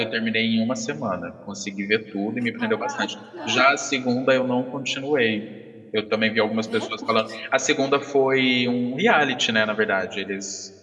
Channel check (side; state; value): both; identical; correlation 1.00